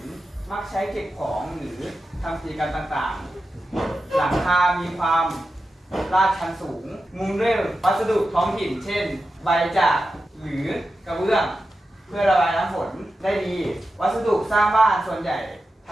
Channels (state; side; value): normal; both; correlation 0.91